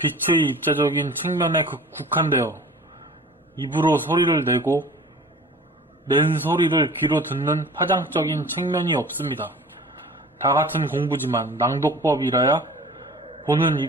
입자적인 측면에 국한되어 입으로 소리를 내고 낸 소리를 귀로 듣는 파장적인 측면이 없습니다. 다 같은 공부지만 낭독법이라야 보는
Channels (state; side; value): normal; both; correlation 0.43